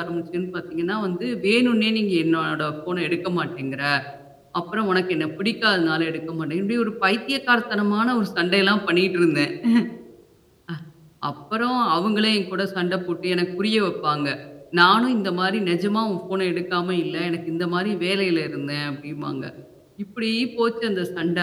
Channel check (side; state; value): both; identical; correlation 1.00